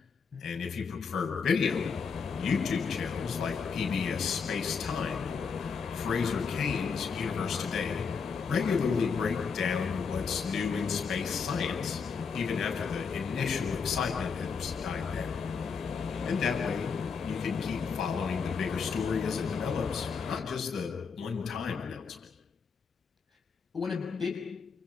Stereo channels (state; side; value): quieter; right; 5.7 dB